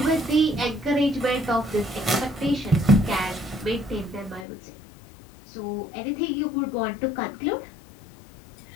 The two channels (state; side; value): drops out; right; at 4.5 s